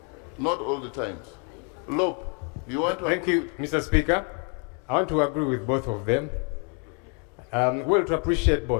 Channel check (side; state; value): right; quieter; 35.1 dB